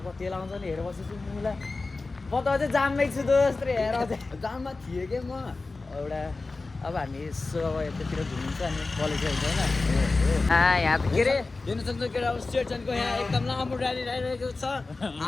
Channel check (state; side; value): quieter; right; 3.6 dB